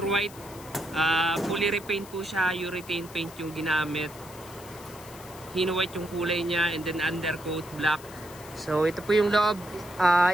fully repaint po siya, urethane paint yung ginamit, hino white yung kulay niya, and then undercoat black. So ito po yung loob,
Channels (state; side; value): noise; left; hiss, 19 dB below the sound